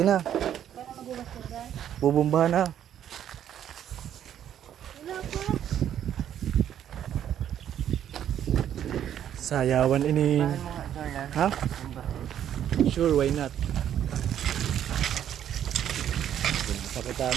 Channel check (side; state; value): left; quieter; 10.2 dB